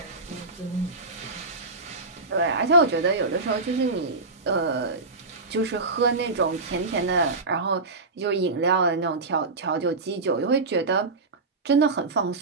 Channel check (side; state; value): left; quieter; 3.5 dB